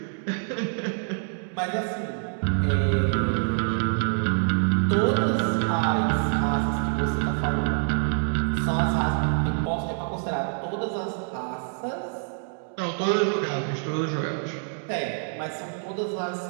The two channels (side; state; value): left; silent; digital silence